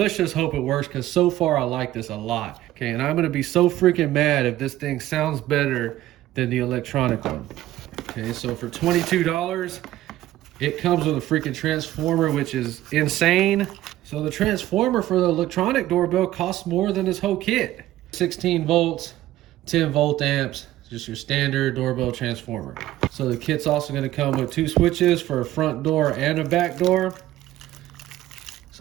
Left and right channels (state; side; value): quieter; left; 14.7 dB